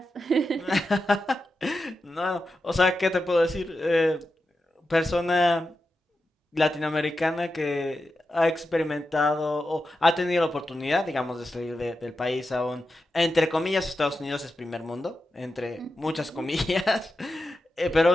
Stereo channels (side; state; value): both; normal; correlation 0.90